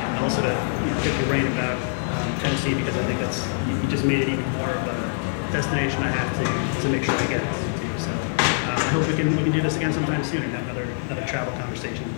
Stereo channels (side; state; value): right; silent; digital silence